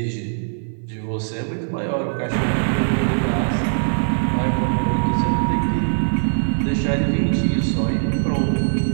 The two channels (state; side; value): silent; left; 56 dB below the other